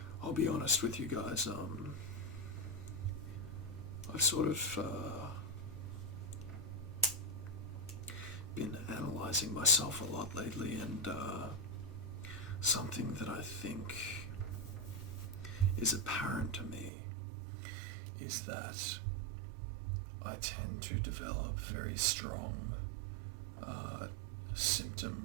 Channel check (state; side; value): drops out; left; at 16.9 s